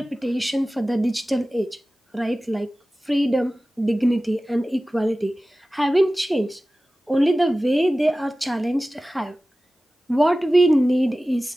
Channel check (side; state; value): both; normal; correlation 0.96